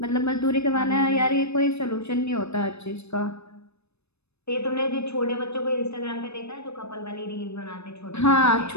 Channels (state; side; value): late; right; 0.80 ms